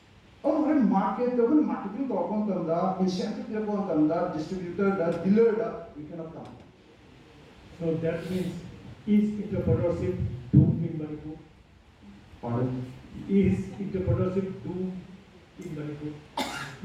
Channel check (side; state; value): both; identical; correlation 1.00